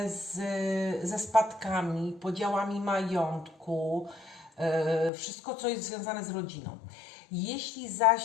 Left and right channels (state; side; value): drops out; right; at 5.1 s